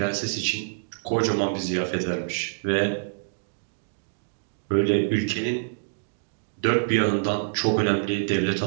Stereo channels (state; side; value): silent; left; digital silence